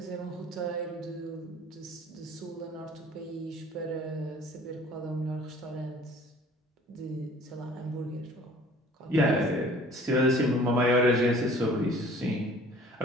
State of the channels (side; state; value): both; normal; correlation 0.51